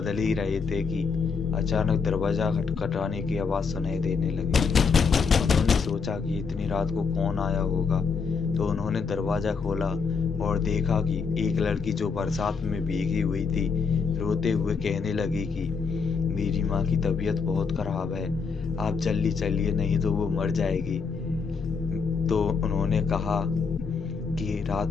ही रहे थे कि अचानक दरवाज़ा खटखटाने की आवाज़ सुनाई देने लगी। उन्होंने सोचा कि इतनी रात को कौन आया होगा, तो उन्होंने दरवाज़ा खोला और देखा कि एक लड़की जो बरसात में भीगी हुई थी, रोते हुए कहने लगी कि मेरी माँ की तबीयत बहुत ख़राब है, आप जल्दी चलिए नहीं तो वो मर जाएगी। तो उन्होंने कहा कि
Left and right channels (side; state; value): right; quieter; 5.2 dB